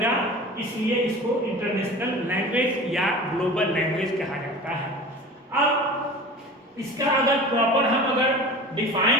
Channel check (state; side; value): normal; both; correlation 0.37